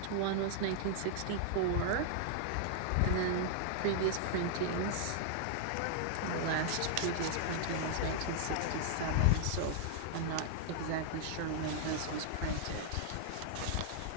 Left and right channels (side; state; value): both; different; correlation -0.01